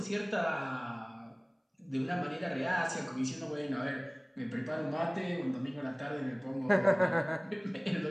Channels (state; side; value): identical; both; correlation 1.00